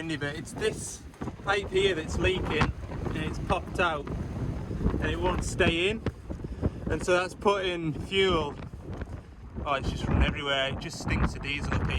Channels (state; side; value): identical; both; correlation 1.00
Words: but it's this pipe here that's leaking and it's popped out and it won't stay in, and so that's putting fuel, oh, it's just running everywhere. It just stinks of diesel up